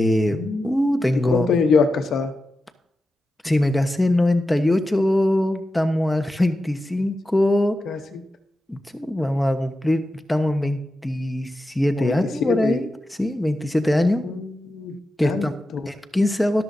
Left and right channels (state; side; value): normal; both; correlation 0.91